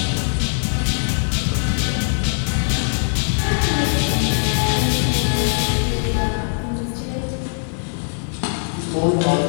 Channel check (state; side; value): silent; right; digital silence